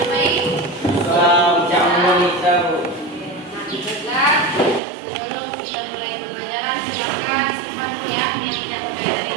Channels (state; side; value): drops out; left; at 4.8 s